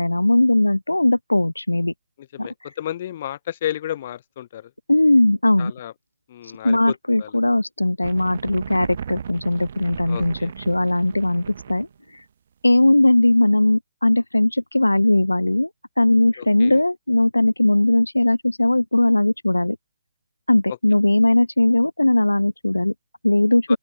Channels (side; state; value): both; inverted; correlation -0.99